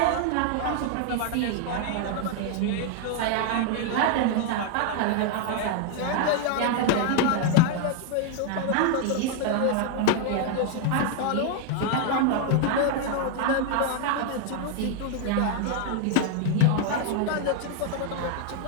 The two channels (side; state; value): both; different; correlation 0.00